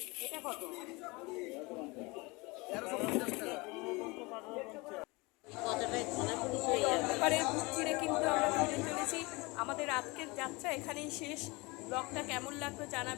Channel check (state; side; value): quieter; right; 25.1 dB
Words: এটা কত? এবারের বুক চিরে কিন্তু আমরা ফিরে চলেছি। আমাদের আজকের যাত্রা এখানেই শেষ। ব্লগটা কেমন লাগলো